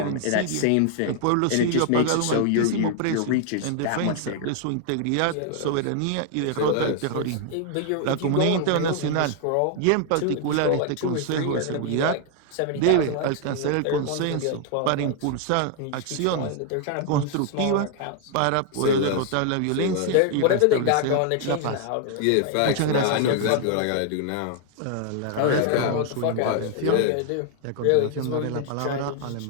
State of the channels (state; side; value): different; both; correlation 0.00